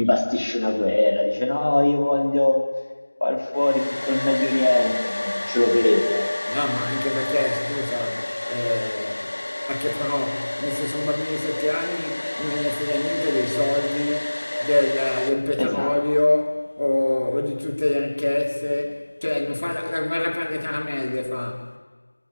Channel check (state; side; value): inverted; both; correlation -1.00